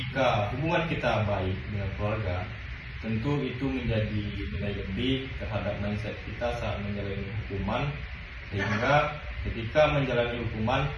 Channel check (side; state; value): both; identical; correlation 1.00